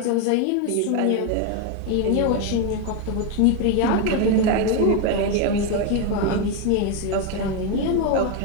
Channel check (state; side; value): different; both; correlation 0.02